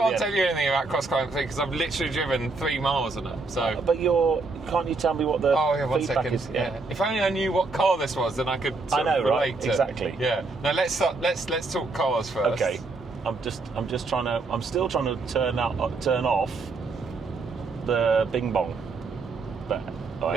the tell end. you anything about Cross Climate 3 because I've literally driven 3 miles on it. So. But can't you tell me what the one feedback second. is? Yeah. If only I knew what car this was, then I could sort of relate to. Exactly. Yeah. Now let's talk cars first. Okay. I'm still trying to turn off the bing bong. But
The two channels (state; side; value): quieter; left; 3.7 dB